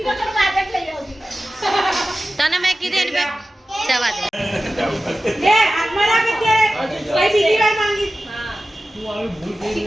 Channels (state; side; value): normal; both; correlation 0.94